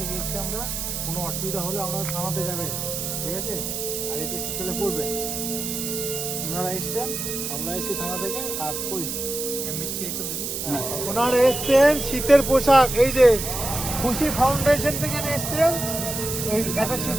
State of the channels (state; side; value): noise; right; hiss, 4 dB below the sound